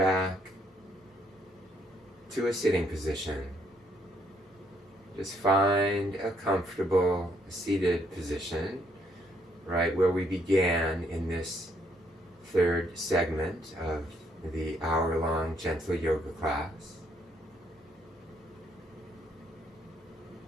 to a sitting position. Just find a comfortable seated position, right where we began in this third segment of the hour-long gentle yoga class.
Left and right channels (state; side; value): normal; both; correlation 0.71